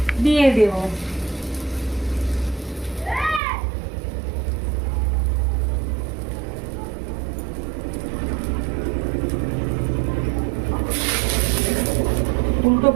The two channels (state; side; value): drops out; left; at 3.4 s